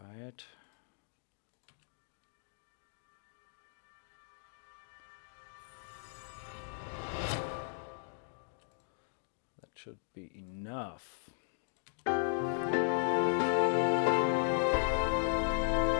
it. That should be enough.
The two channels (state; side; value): silent; right; digital silence